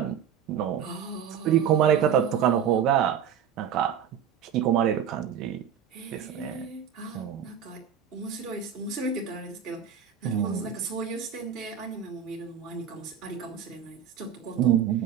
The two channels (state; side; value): quieter; left; 8.6 dB